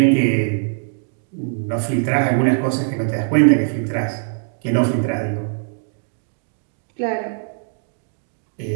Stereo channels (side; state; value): left; silent; digital silence